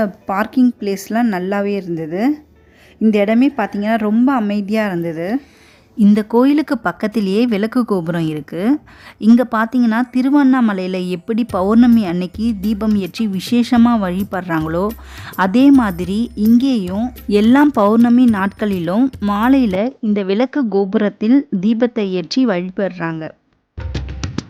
பார்க்கிங் பிளேஸ்லாம் நல்லாவே இருந்தது. இந்த இடமே பார்த்திங்கன்னா ரொம்ப அமைதியாக இருந்தது. இந்த கோயிலுக்கு பக்கத்திலேயே விளக்கு கோபுரம் இருக்குது. இங்கே பார்த்தீங்கன்னா திருவண்ணாமலையில் எப்படி பௌர்ணமி அன்னைக்கு தீபம் ஏற்றி விசேஷமாக வழிபடுறாங்களோ அதே மாதிரி இங்கேயும் எல்லா பௌர்ணமி நாட்களிலும் மாலையில் இந்த விளக்கு கோபுரத்தில் தீபத்தை ஏற்றி வழிபடுறாங்க.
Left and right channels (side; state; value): both; identical; correlation 1.00